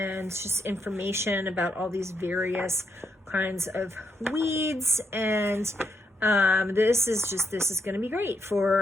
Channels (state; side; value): normal; both; correlation 0.80